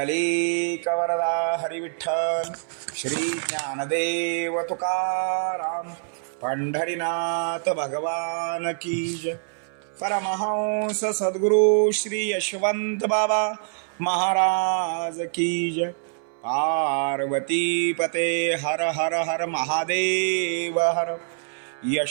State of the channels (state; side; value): silent; left; 60 dB below the other